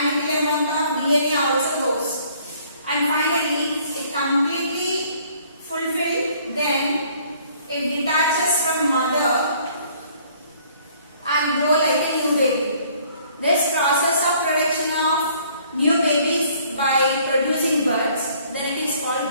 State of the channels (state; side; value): inverted; both; correlation -0.59